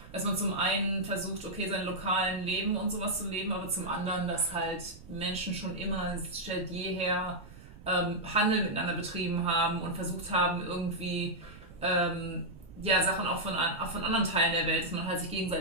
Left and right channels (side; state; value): right; noise; rumble, 18 dB below the sound